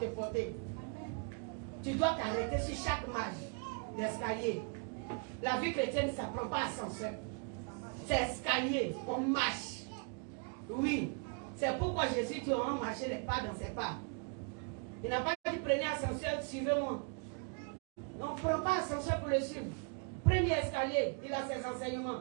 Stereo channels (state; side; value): quieter; left; 39.1 dB